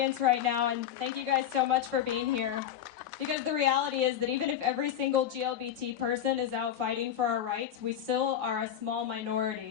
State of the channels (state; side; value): quieter; right; 9.9 dB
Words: right now, and thank you guys so much for being here. Because the reality is that even if every single GLBT person is out fighting for our rights, we still are a small